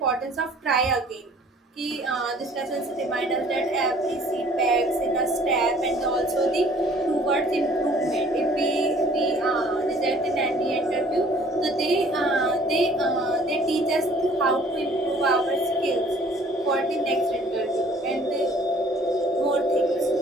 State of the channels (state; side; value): normal; both; correlation 0.55